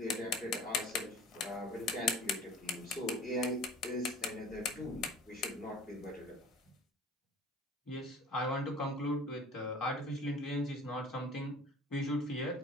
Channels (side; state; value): both; normal; correlation 0.44